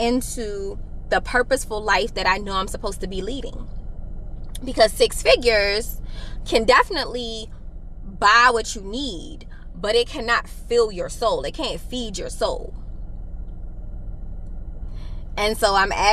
the purposeful life that I know I'm supposed to be leading. Because 6 figures can definitely buy what you need, but it cannot fill your soul. It can't feed your soul. And so I'm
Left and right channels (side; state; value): both; identical; correlation 1.00